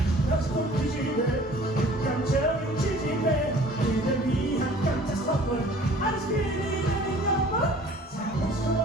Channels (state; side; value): normal; both; correlation 0.50